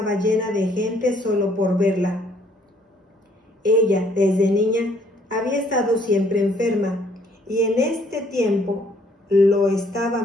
llena de gente solo por verla. Ella, desde niña, había estado siempre enferma, y en este tiempo lo estaba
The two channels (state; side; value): normal; both; correlation 0.63